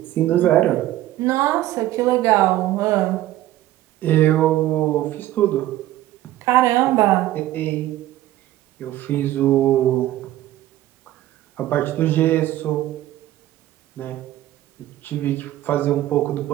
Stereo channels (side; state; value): left; quieter; 14.5 dB